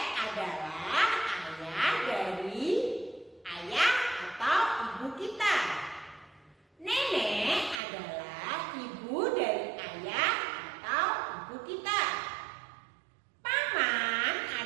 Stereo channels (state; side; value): drops out; left; at 7.8 s